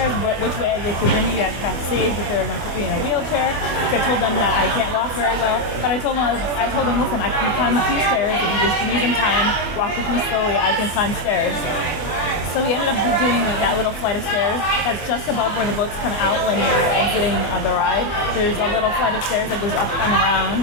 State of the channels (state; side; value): late; right; 24 ms